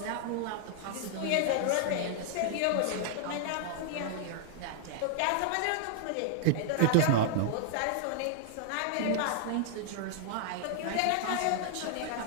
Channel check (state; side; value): different; both; correlation -0.01